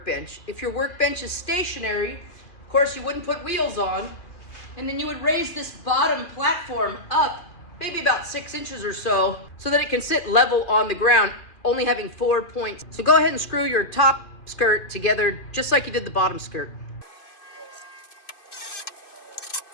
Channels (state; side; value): late; right; 2.7 ms